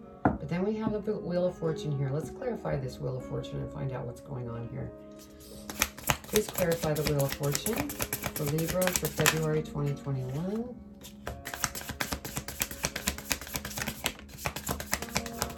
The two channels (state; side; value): identical; both; correlation 1.00